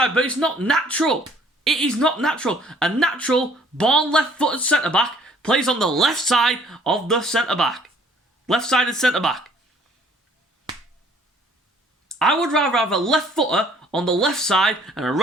but it's not natural. It is not natural. A natural, born left-footed centre back plays on the left side of the centre back. Left-sided centre back. I would rather have a left footer on the left side and a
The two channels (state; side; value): normal; both; correlation 0.58